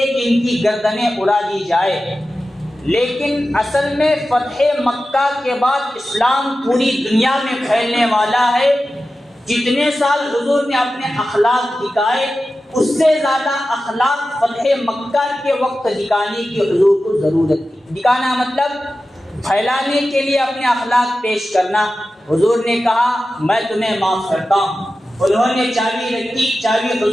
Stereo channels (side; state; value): both; normal; correlation 0.94